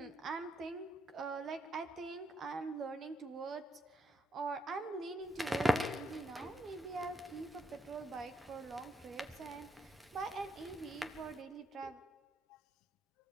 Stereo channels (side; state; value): both; normal; correlation 0.79